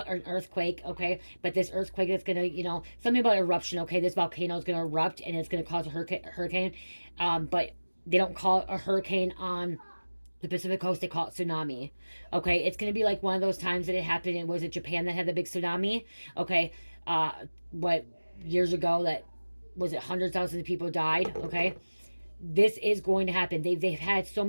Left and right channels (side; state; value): both; inverted; correlation -1.00